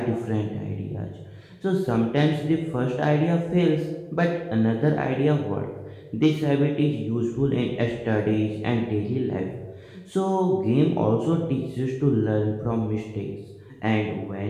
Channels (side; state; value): both; identical; correlation 1.00